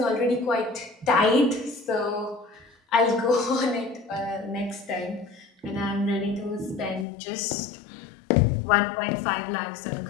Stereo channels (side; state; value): right; drops out; at 7.1 s